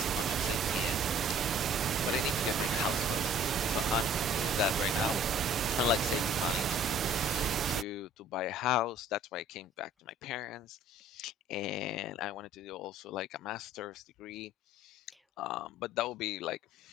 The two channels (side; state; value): both; normal; correlation 0.53